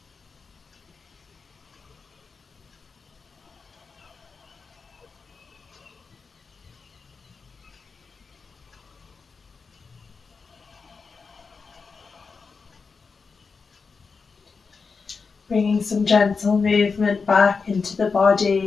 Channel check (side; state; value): right; quieter; 4.9 dB